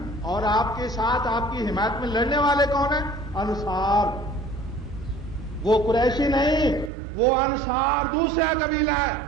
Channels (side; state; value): left; drops out; at 6.9 s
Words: اور آپ کے ساتھ آپ کی حمایت میں لڑنے والے کون ہیں؟ انصار۔ وہ قریشی نہیں، وہ انصار دوسرا قبیلہ ہے۔